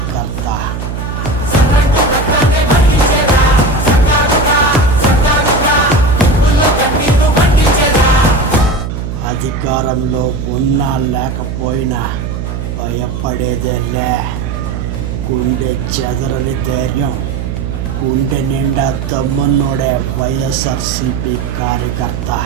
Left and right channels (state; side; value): noise; right; hum, 5 dB below the sound